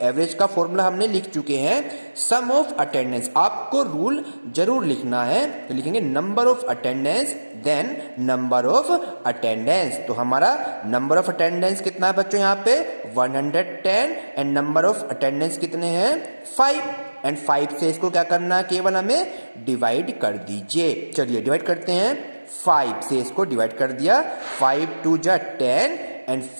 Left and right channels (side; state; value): both; inverted; correlation -1.00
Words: का फॉर्मूला हमने लिख चुके हैं सम ऑफ अटेंडेंस। आपको रूल जरूर लिखना है। तो लिखेंगे number of attendance then number of attendance. तो हमारा नंबर ऑफ अटेंडेंस कितना है बच्चों यहाँ पे 110 एंड नंबर ऑफ अटेंडेंस कितने हैं 5 एंड 5 से इसको क्या करना है, केवल हमें डिवाइड कर दीजिए। चलिए डिवाइड करते हैं। 5 से इसको डिवाइड कर दिया। 5 2 जा 10 एंड